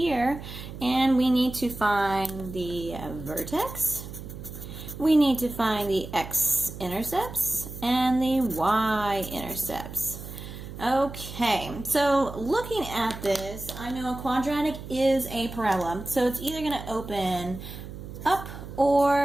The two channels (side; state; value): right; noise; hum, 11 dB below the sound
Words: and we need to find the vertex, we need to find the x-intercepts, and the y-intercepts. Okay, so looking at this, I know a quadratic is a parabola, so it's either going to open up